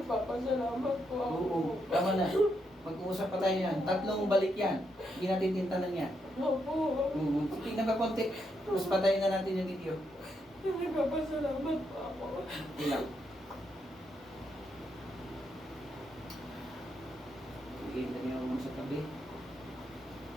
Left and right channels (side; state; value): both; normal; correlation 0.80